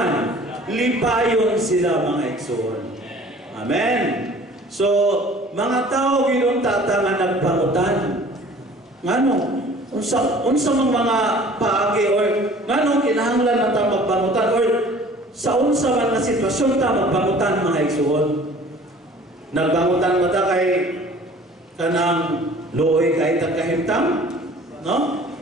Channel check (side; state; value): both; normal; correlation 0.49